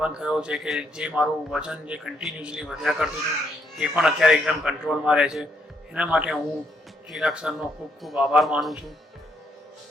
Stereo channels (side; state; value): both; normal; correlation 0.74